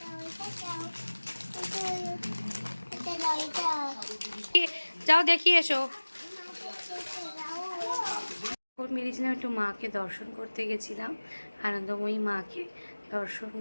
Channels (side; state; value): both; inverted; correlation -1.00